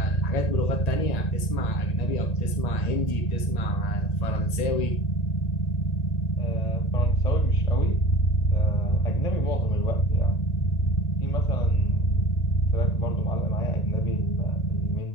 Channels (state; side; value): late; right; 1.9 ms